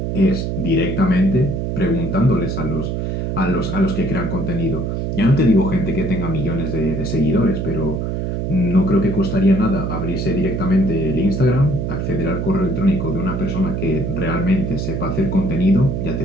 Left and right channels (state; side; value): noise; right; hum, 2 dB below the sound